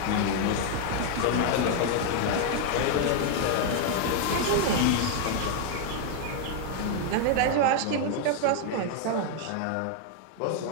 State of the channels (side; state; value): both; different; correlation 0.00